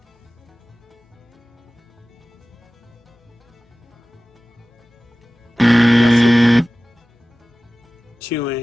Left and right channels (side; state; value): both; normal; correlation 0.97